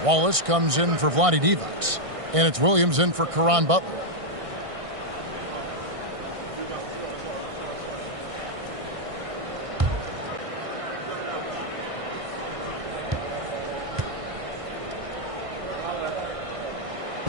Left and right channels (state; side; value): late; left; 1.6 ms